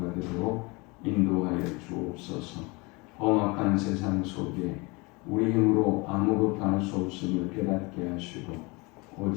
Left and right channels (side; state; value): right; quieter; 26.7 dB